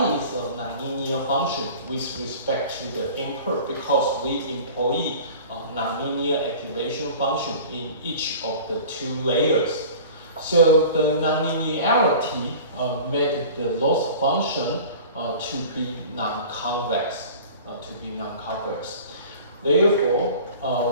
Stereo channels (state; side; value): inverted; both; correlation -0.41